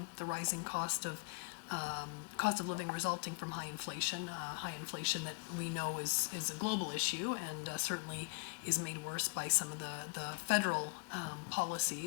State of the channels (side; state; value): right; quieter; 31.9 dB